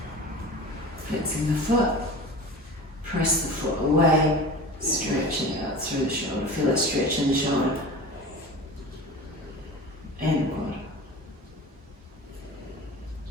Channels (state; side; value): normal; both; correlation 0.34